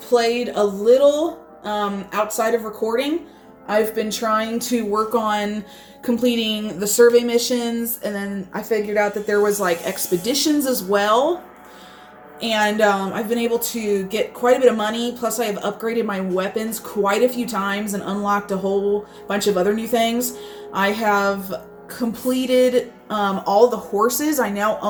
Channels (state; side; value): identical; both; correlation 1.00